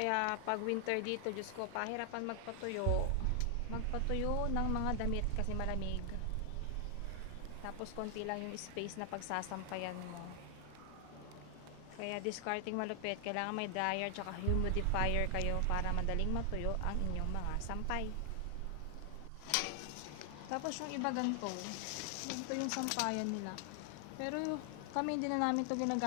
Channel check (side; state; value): both; different; correlation 0.00